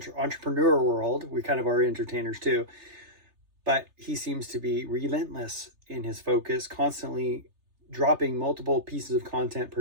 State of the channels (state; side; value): late; left; 3.3 ms